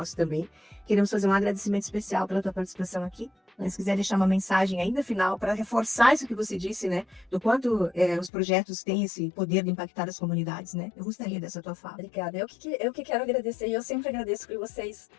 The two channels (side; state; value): right; drops out; at 8.3 s